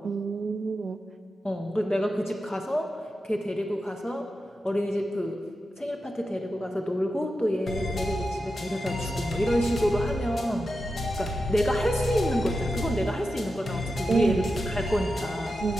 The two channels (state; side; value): normal; both; correlation 0.90